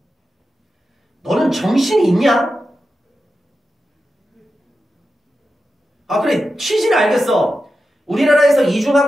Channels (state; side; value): normal; both; correlation 0.91